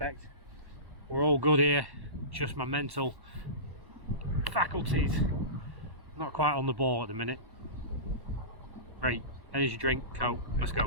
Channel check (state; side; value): late; left; 1.1 ms